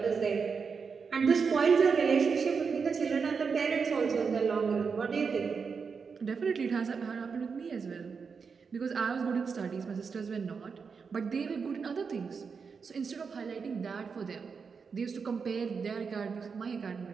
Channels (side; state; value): left; quieter; 5.6 dB